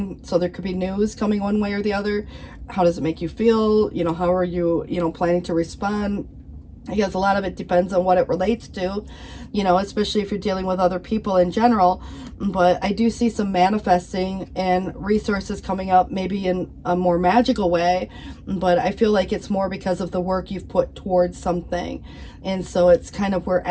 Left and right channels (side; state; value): both; identical; correlation 1.00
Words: So there could be news coming one way or the other. How does it make you feel? How are you, planning to respond? I guess a lot of it depends on what it relates to, especially if you're dealing with other people in general. But I do see some manifesting and resources coming up, maybe in a more magical way. But I feel like it's more because of the work you've put towards something. And so it's kind of where